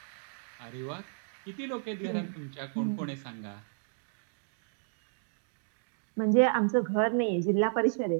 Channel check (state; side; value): silent; left; digital silence